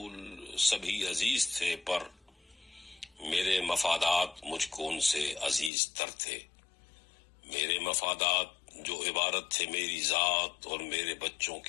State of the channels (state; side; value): drops out; right; at 5.7 s